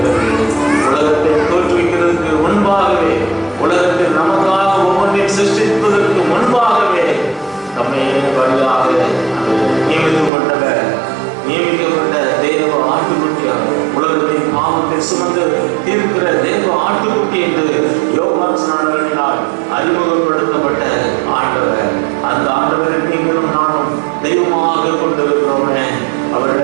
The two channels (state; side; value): drops out; left; at 10.3 s